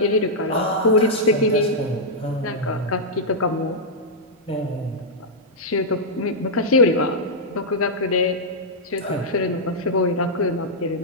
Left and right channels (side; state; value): both; normal; correlation -0.08